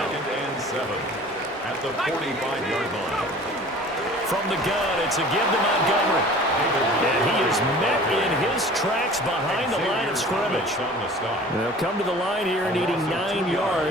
2nd and 7 at the 45-yard line. From the gun, it's a give to Montgomery. And he is met in his tracks behind the line of scrimmage. They'll come to the line here needing 9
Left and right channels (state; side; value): normal; both; correlation 0.45